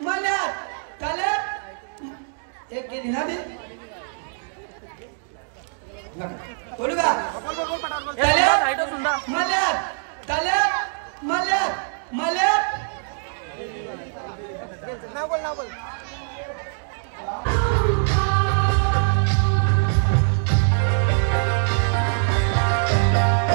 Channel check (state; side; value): silent; left; digital silence